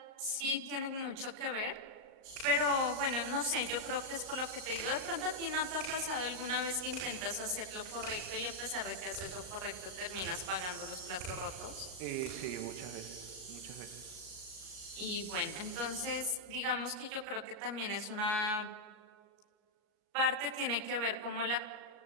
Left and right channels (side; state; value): left; late; 38 ms